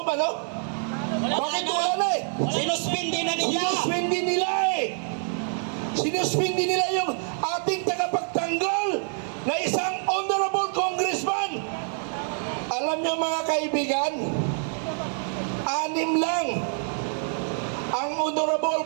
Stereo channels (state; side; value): silent; left; 57 dB below the other